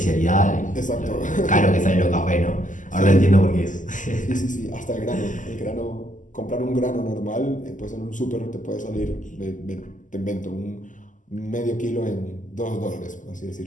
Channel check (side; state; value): right; late; 0.37 ms